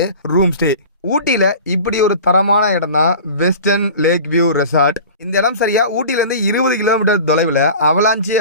ரூம் ஸ்டே. ஊட்டியில இப்படி ஒரு தரமான இடம் தான் வெஸ்டர்ன் லேக் வியூ ரெசார்ட். இந்த இடம் சரியா ஊட்டியிலேருந்து 20 கிலோமீட்டர் தொலைவில் அவலாஞ்சி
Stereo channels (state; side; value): inverted; both; correlation -0.38